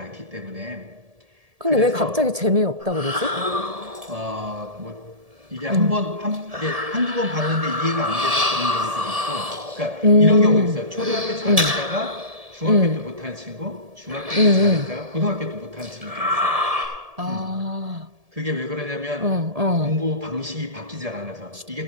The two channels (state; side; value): late; left; 1.7 ms